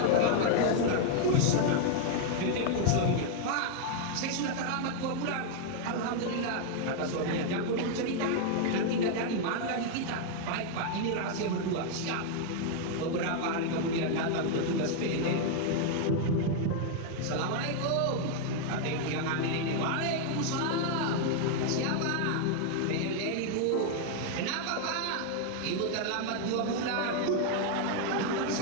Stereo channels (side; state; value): both; different; correlation 0.00